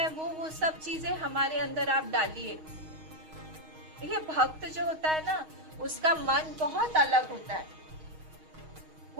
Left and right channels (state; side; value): late; left; 6.4 ms